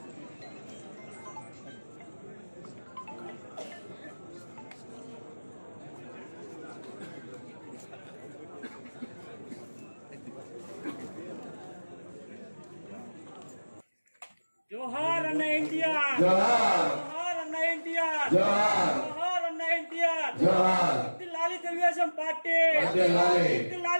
जोहार अन्ना एनटीआर जोहार अन्ना एनटीआर जोहार अन्ना एनटीआर जोहार लाली తెలుగుదేశం పార్టీ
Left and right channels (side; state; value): both; inverted; correlation -1.00